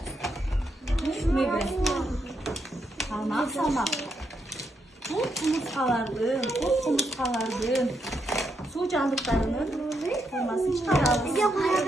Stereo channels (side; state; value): both; normal; correlation 0.80